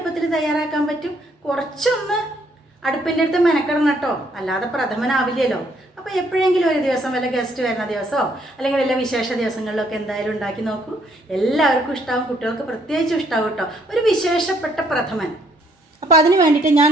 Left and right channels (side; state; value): both; normal; correlation 0.68